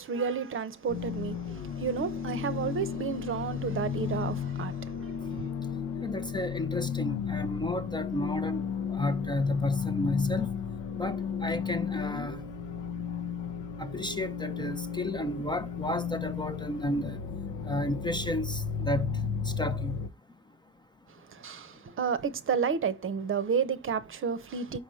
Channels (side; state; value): both; normal; correlation 0.34